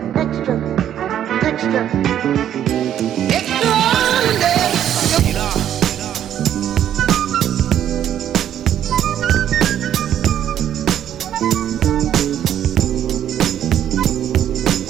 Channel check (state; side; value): quieter; left; 10.5 dB